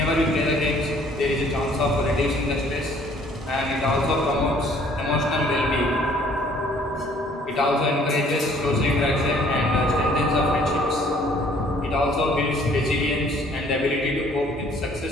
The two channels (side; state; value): both; normal; correlation 0.58